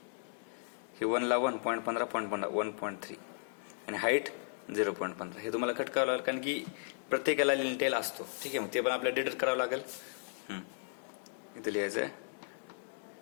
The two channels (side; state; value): right; silent; 54 dB below the other